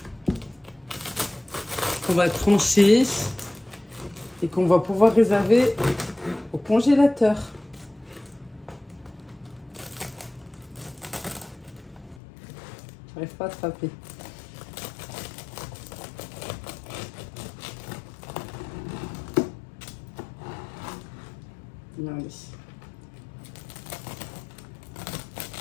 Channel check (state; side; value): drops out; right; at 12.2 s